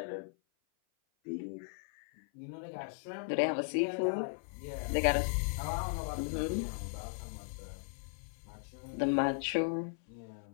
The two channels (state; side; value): silent; right; 53 dB below the other